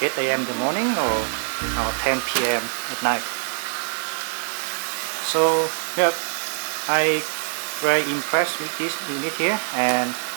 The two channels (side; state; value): left; silent; digital silence